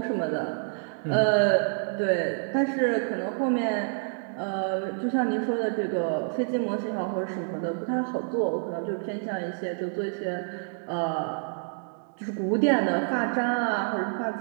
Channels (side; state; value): left; silent; digital silence